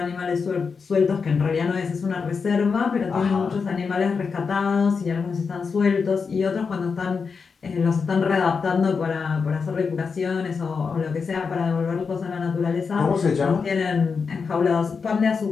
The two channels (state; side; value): quieter; right; 5.4 dB